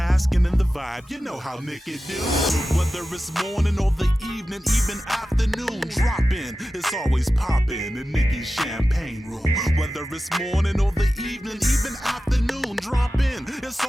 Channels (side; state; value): both; normal; correlation 0.94